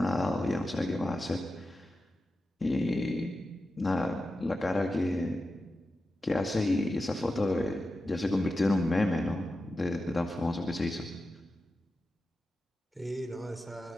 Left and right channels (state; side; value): normal; both; correlation 0.91